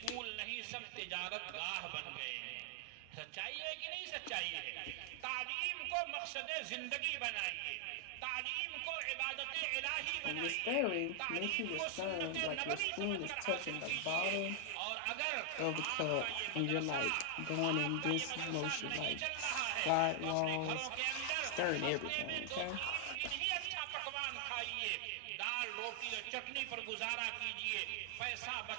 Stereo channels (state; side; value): different; both; correlation 0.00